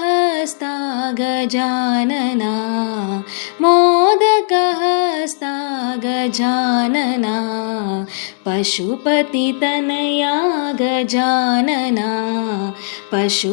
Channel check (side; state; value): right; silent; digital silence